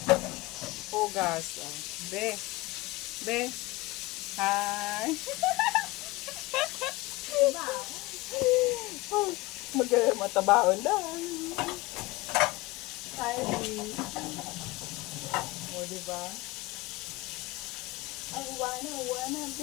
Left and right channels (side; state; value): right; quieter; 21.5 dB